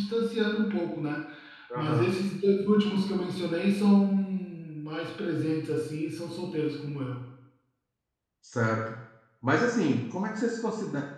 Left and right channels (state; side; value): identical; both; correlation 1.00